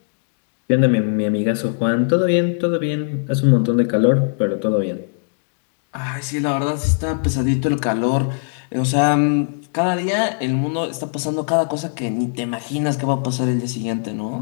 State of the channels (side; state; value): right; silent; digital silence